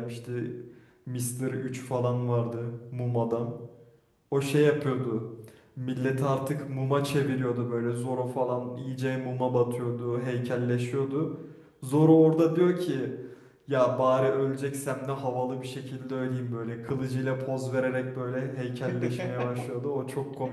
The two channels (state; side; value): identical; both; correlation 1.00